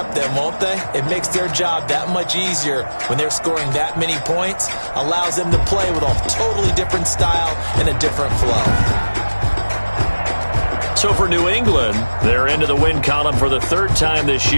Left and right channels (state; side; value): inverted; both; correlation -1.00